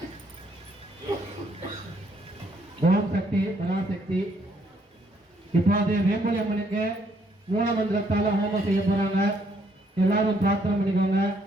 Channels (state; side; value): normal; both; correlation 0.69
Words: ஓம் சக்தி பராசக்தி. இப்போது வேம்பொழி அம்மனுக்கு மூல மந்திரத்தால ஹோமம் செய்ய போறாங்க. எல்லாரும் பிரார்த்தனை பண்ணிக்கோங்க.